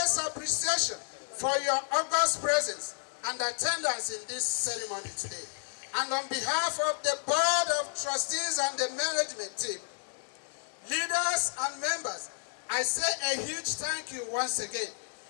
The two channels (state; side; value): silent; right; digital silence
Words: appreciation for your august presence and attendance in this ceremony today. And on behalf of the Board of Trustees and the management team, leaders and members, I say a huge thank you once again.